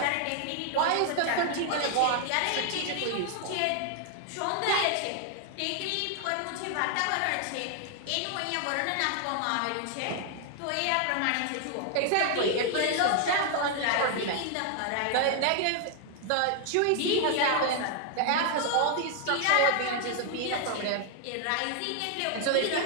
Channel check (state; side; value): different; both; correlation 0.00